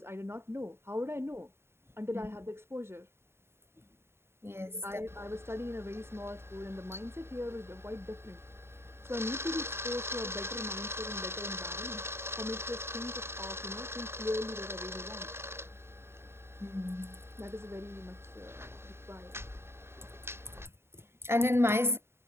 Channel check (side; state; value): left; late; 0.12 ms